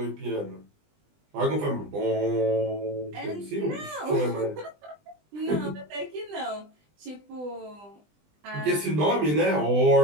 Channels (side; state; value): left; late; 20 ms